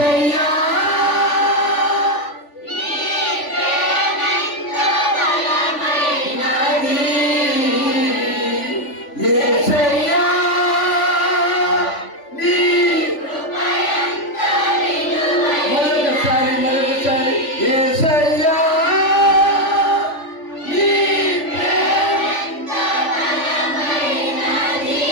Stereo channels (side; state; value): right; late; 3.5 ms